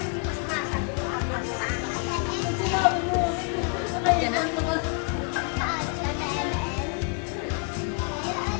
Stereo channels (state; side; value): quieter; right; 35.5 dB